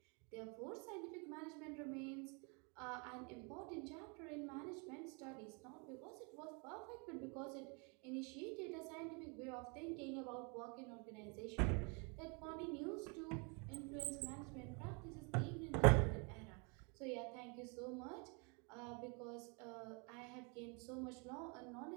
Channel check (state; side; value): quieter; left; 33.4 dB